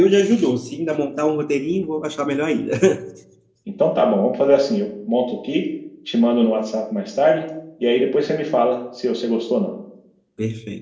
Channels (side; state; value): both; identical; correlation 1.00